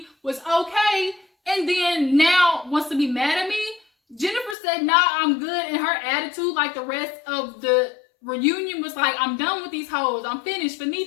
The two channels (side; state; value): right; drops out; at 4.5 s